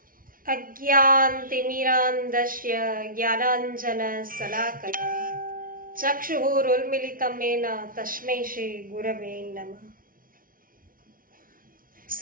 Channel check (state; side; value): late; left; 0.41 ms